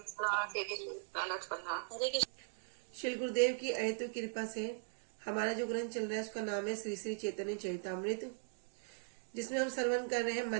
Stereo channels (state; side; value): silent; left; digital silence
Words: श्री गुरुदेव की अहेतु कृपा से हमारा जो ग्रंथ चल रहा है उसका नाम है श्री श्री चैतन्य चरितामृत, जिसमें हम श्रवण कर रहे हैं